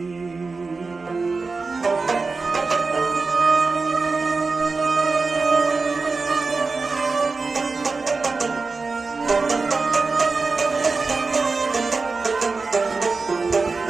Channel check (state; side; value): quieter; left; 4.1 dB